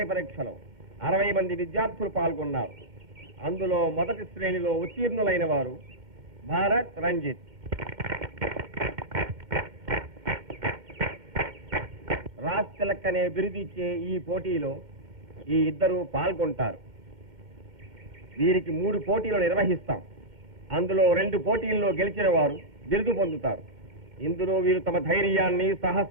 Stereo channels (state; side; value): late; left; 2.1 ms